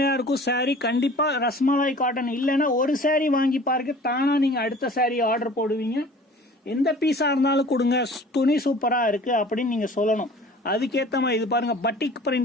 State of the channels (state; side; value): normal; both; correlation 0.46